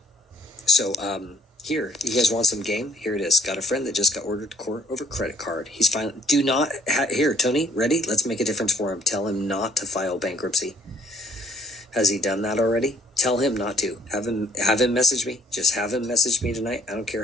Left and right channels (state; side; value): normal; both; correlation 0.61